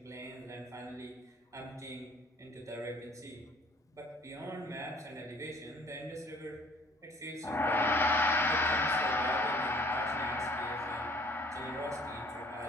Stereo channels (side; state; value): both; normal; correlation 0.56